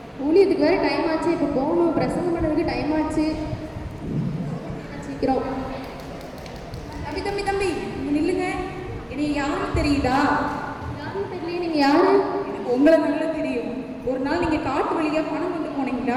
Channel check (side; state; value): both; identical; correlation 1.00